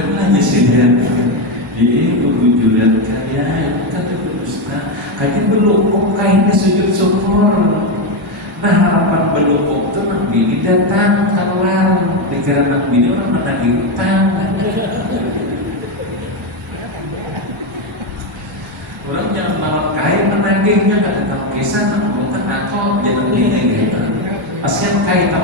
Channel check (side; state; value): both; normal; correlation 0.09